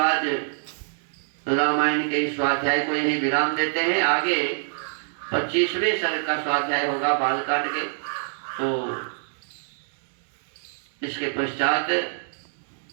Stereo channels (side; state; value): left; silent; digital silence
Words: रामायण के इस स्वाध्याय को यही विराम देते हैं। आगे 25वें सर्ग का स्वाध्याय होगा बालकांड के। तो इसके पश्चात